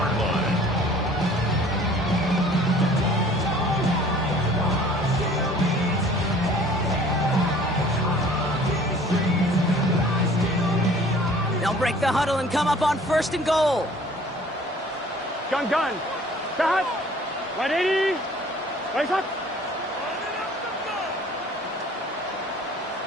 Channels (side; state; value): both; normal; correlation 0.52